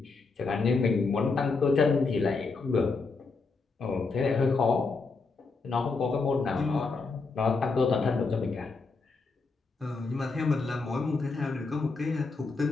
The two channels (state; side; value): quieter; right; 4.2 dB